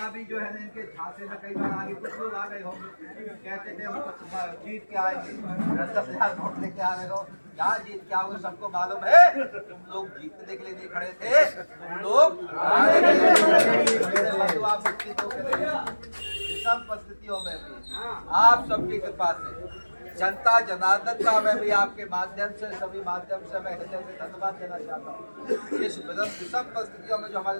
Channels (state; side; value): inverted; both; correlation -1.00